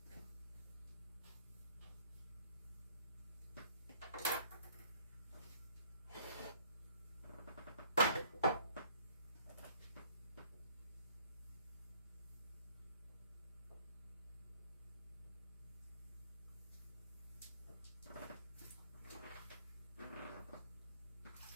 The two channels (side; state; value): both; inverted; correlation -0.59